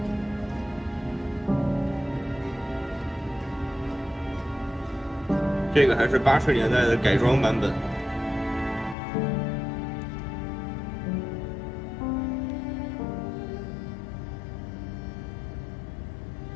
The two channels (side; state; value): right; drops out; at 9.0 s